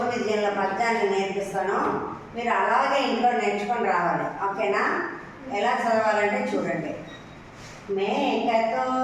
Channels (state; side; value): identical; both; correlation 1.00